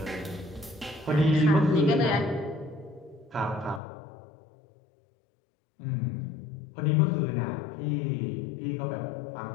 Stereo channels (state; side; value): drops out; right; at 3.8 s